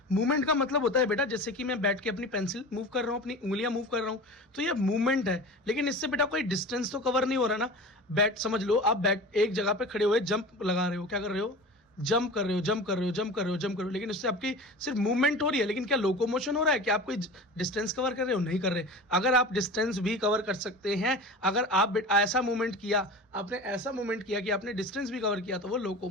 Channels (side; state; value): both; normal; correlation 0.34